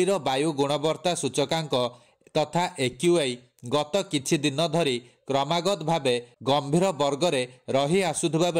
वायु गुणवत्ता सूचकांक तथा एक्यूआई गत किछि दिन धरी क्रमागत भावे गंभीर वर्गरे रही आसुथुबा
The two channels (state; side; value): identical; both; correlation 1.00